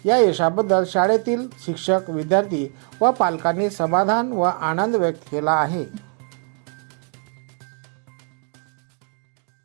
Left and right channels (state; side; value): quieter; left; 39.6 dB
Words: या यशाबद्दल शाळेतील शिक्षक, विद्यार्थी व पालकांनी समाधान व आनंद व्यक्त केला आहे।